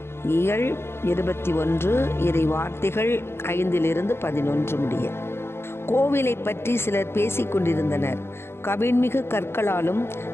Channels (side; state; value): right; late; 0.12 ms